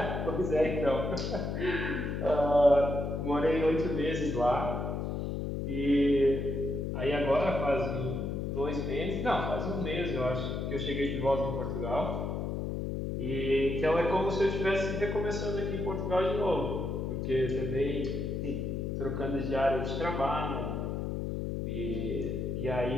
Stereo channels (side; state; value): left; noise; hum, 2 dB below the sound